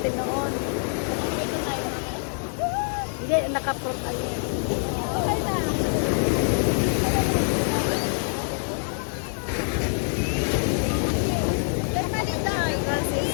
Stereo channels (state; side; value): silent; right; 61 dB below the other